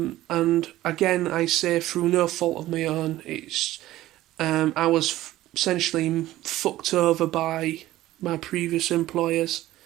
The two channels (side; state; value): left; quieter; 15.4 dB